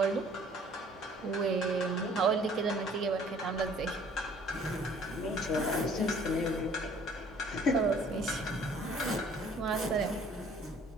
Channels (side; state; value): both; normal; correlation 0.56